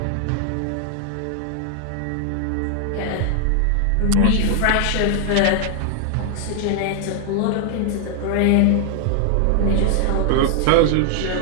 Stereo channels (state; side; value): different; both; correlation 0.00